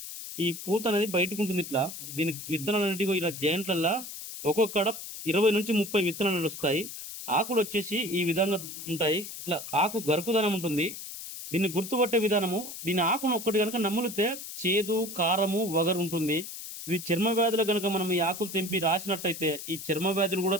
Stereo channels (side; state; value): left; noise; hiss, 10 dB below the sound